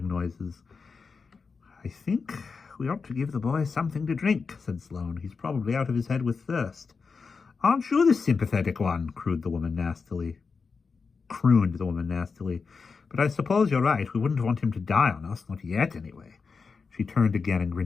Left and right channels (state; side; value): quieter; right; 5.0 dB